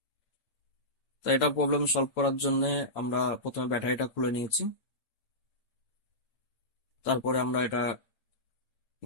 তাই এটা প্রবলেম সলভ করার জন্য আমরা প্রথমে ব্যাটারিটা খুলে নিয়েছি। তারপরে আমরা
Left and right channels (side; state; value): right; late; 8.5 ms